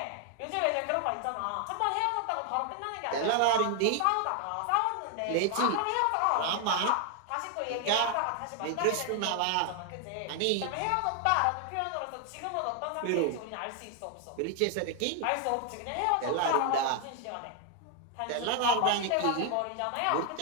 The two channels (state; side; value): different; both; correlation 0.00